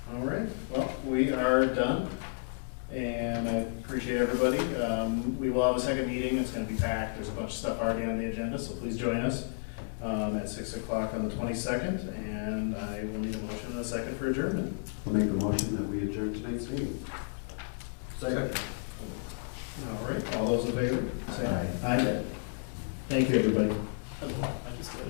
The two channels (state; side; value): silent; right; 56 dB below the other